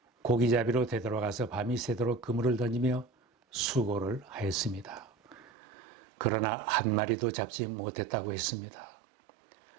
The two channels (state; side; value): drops out; left; at 5.5 s